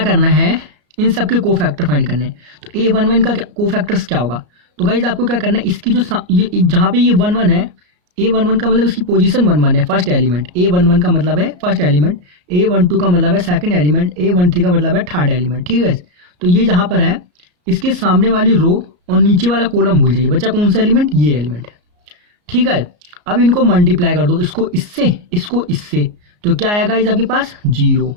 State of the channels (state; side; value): late; left; 34 ms